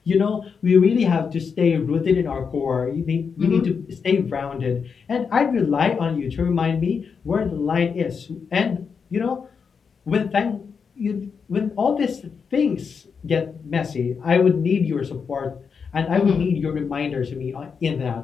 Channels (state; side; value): quieter; right; 6.0 dB